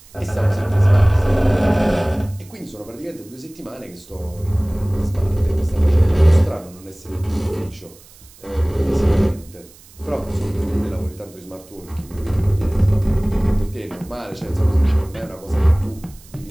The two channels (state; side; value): noise; right; hiss, 24 dB below the sound